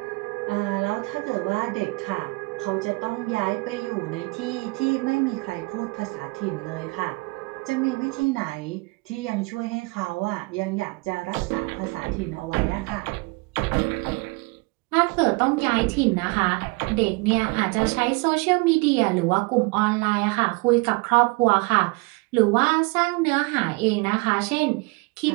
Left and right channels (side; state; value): left; quieter; 27.5 dB